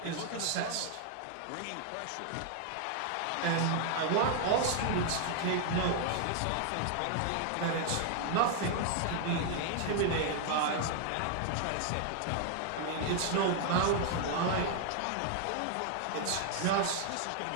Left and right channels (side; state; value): both; different; correlation 0.00